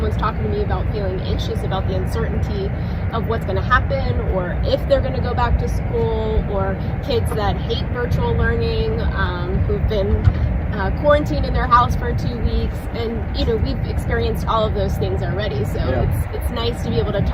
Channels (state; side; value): identical; both; correlation 1.00